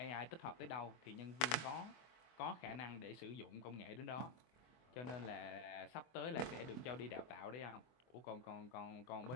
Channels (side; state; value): right; late; 24 ms